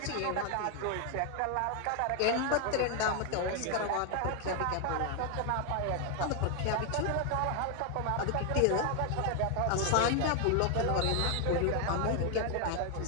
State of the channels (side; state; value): both; different; correlation 0.00